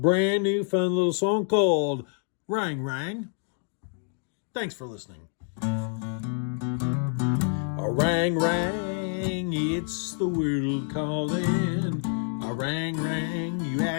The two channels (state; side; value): silent; right; 60 dB below the other